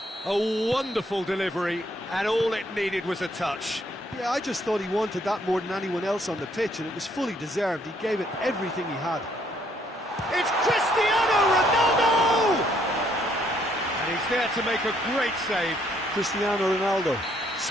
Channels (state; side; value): normal; both; correlation 0.68